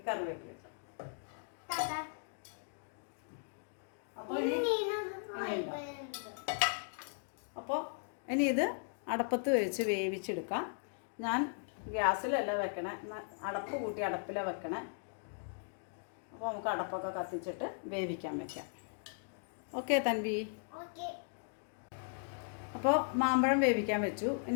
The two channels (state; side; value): silent; right; digital silence